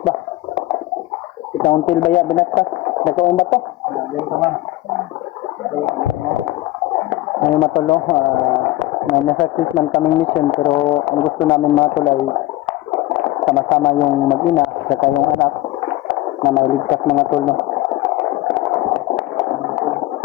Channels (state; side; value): quieter; right; 17.2 dB